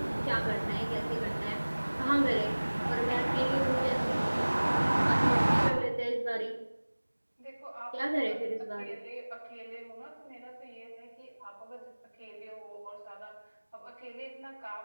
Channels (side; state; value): both; inverted; correlation -1.00